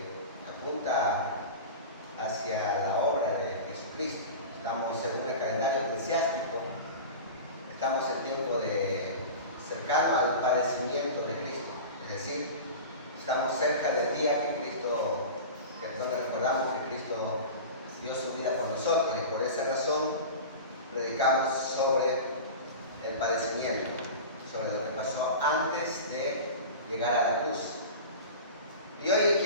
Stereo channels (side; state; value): both; inverted; correlation -0.31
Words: apunta hacia la obra de Jesucristo. Estamos según el calendario eclesiástico, estamos en tiempo cercano al padecimiento de Cristo, es decir, estamos cerca del día donde recordamos que Cristo dio su vida por nosotros, y por esa razón predicamos sobre el padecimiento, sobre lo que pasó antes de llegar a la cruz. Y hoy